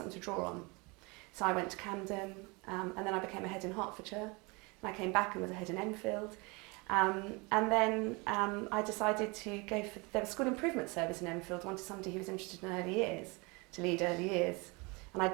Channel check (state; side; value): quieter; left; 27.7 dB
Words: to draw on. So I went to Camden, and then I became a head in Hertfordshire, and I came back and was a head in Enfield. And then I decided to go for, there was a school improvement service in Enfield, wanted somebody who was interested in early years, to lead early years. And I'd